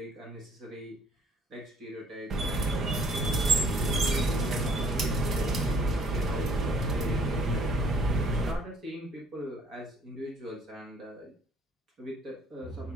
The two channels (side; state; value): both; normal; correlation 0.60